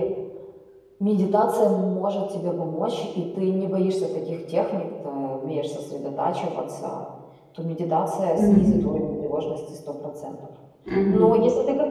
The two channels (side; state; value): both; identical; correlation 1.00